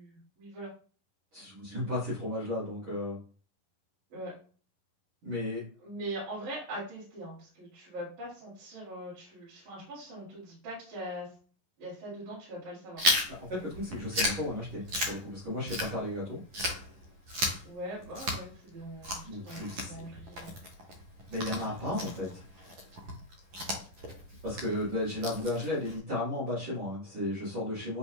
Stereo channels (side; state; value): left; late; 11 ms